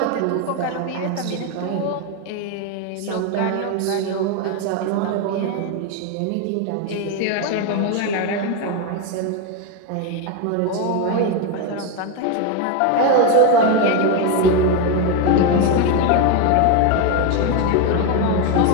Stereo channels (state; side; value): different; both; correlation 0.02